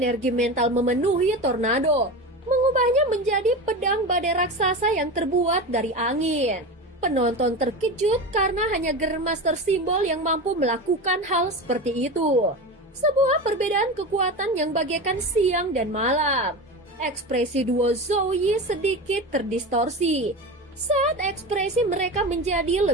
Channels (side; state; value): both; normal; correlation 0.25